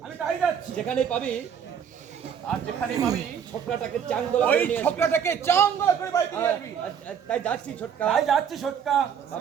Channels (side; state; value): left; quieter; 7.9 dB